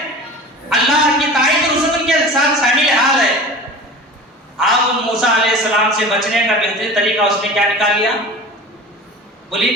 اللہ کی تائید اور رسول کے ساتھ شامل حال ہے. اب موسیٰ علیہ السلام سے بچنے کا بہترین طریقہ اس نے کیا نکال لیا؟ بولیے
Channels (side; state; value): both; normal; correlation 0.37